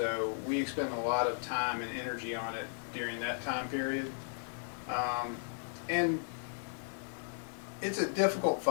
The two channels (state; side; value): silent; right; 54 dB below the other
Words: we expend a lot of time and energy on it during that time period. And it's a difficult